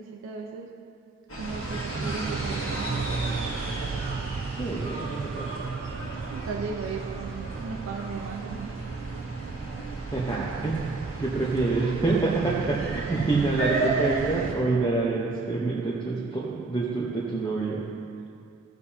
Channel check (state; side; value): quieter; left; 3.2 dB